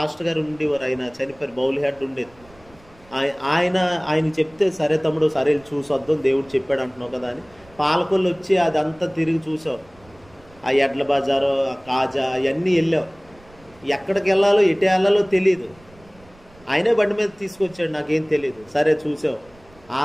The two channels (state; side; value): noise; right; rumble, 27 dB below the sound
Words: గారు ఉండేవారు, ఆయన చనిపోయారు, బౌల్ హెడ్ ఉండేది. ఆయన చెప్తే సరే తమ్ముడు సరే చూసి వద్దాం దేవుడు చెప్పాడు అంటున్నావు కదా అని పాలకొల్లు వచ్చి అదంతా తిరిగి చూసాం. ఆ ఎడ్ల బజారు, ఆ కాజా అవన్నీ వెళ్ళాం. ఎక్కడికి వెళ్ళాలో ఎటు వెళ్ళాలో తెలియదు, ఆయనే బండి మీద తీసుకొచ్చాడు, నాకేం తెలియదు. సరే చూసాం. ఆ